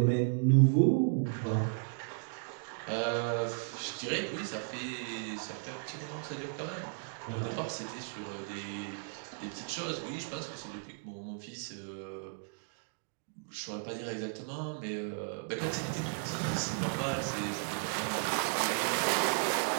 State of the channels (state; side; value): silent; left; digital silence